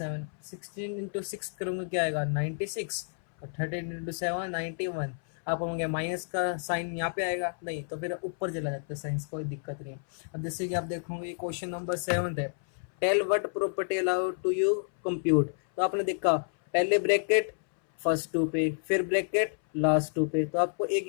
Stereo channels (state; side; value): silent; right; 58 dB below the other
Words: 16 इंटू 6 करूँगा क्या आएगा 96, और 13 इंटू 7 91। आप कहोगे माइनस का साइन यहाँ पे आएगा, नहीं तो फिर ऊपर चला जाता है साइंस, कोई दिक्कत नहीं है। अब जैसे कि आप देखोगे क्वेश्चन नंबर 7 है, tell what property allowed to you compute. तो आपने देखा पहले ब्रैकेट फर्स्ट टू पे, फिर ब्रैकेट लास्ट टू पे, तो आपको एक